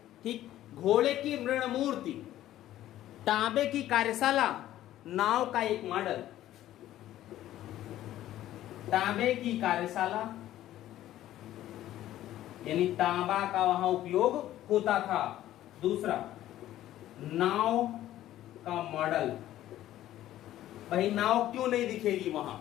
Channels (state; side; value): quieter; right; 13.5 dB